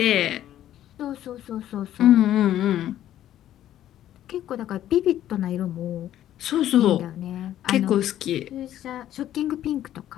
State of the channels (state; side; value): quieter; right; 12.1 dB